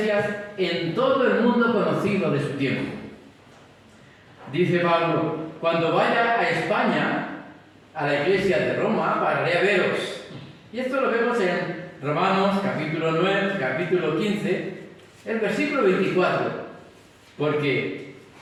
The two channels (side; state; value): both; identical; correlation 1.00